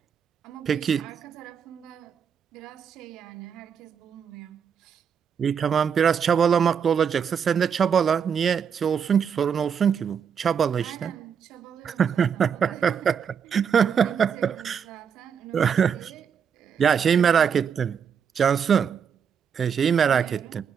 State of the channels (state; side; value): quieter; left; 7.2 dB